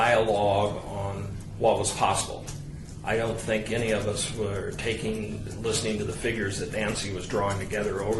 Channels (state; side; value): identical; both; correlation 1.00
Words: on what was possible. I don't think any of us were listening to the figures that Nancy was drawing together